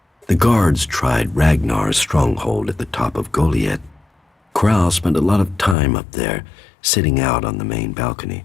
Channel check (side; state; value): right; drops out; at 5.8 s